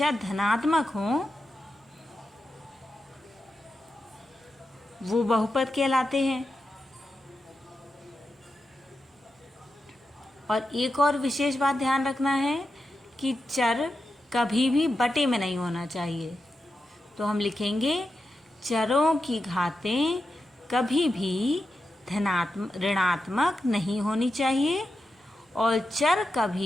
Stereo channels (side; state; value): both; normal; correlation 0.89